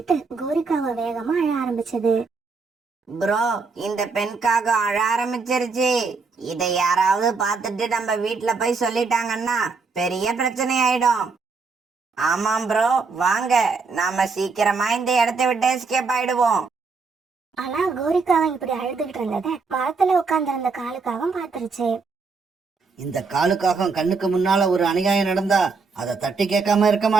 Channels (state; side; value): quieter; left; 4.6 dB